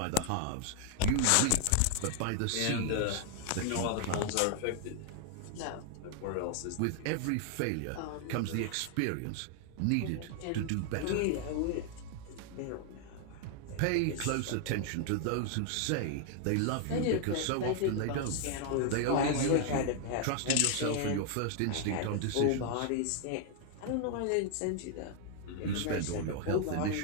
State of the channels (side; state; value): both; different; correlation 0.00